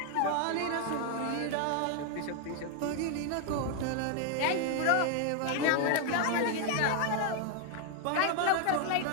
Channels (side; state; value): both; different; correlation 0.00